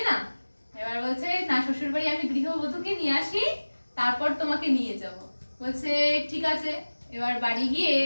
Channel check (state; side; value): inverted; both; correlation -1.00